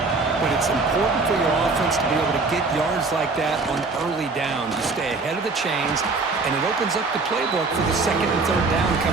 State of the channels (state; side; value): quieter; left; 3.9 dB